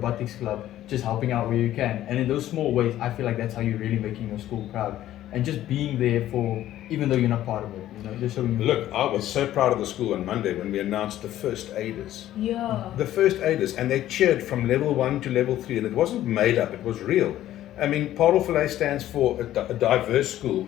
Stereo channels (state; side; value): quieter; right; 13.2 dB